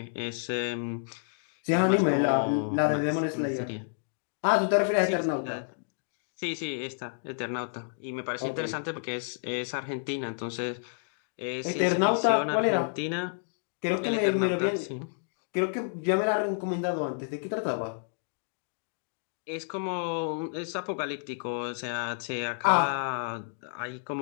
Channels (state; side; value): silent; right; digital silence